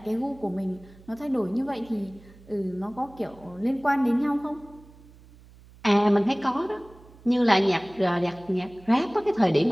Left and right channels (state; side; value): noise; right; hum, 24 dB below the sound